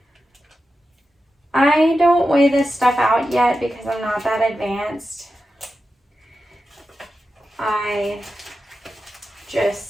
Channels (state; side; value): normal; both; correlation 0.91